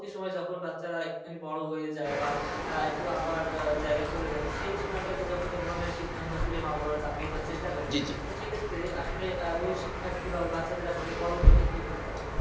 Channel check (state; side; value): identical; both; correlation 1.00